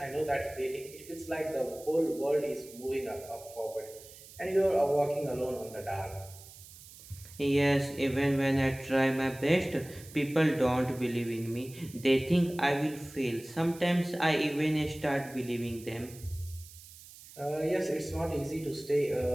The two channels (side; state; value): right; noise; hiss, 19 dB below the sound